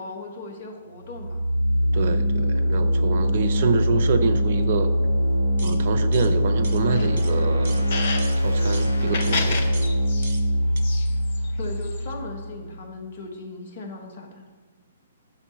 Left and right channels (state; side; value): inverted; both; correlation -0.85